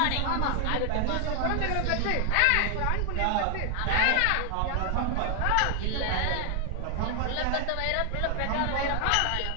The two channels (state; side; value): different; both; correlation 0.00